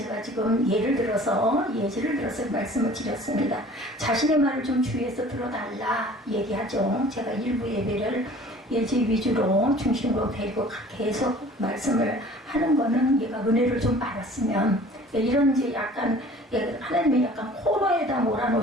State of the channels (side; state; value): both; normal; correlation 0.48